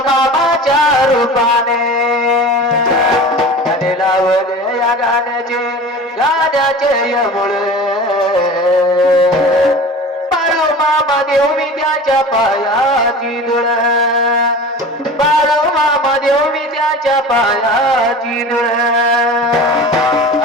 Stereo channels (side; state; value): both; normal; correlation 0.37